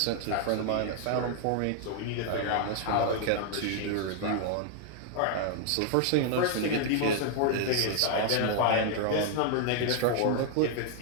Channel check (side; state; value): both; different; correlation 0.00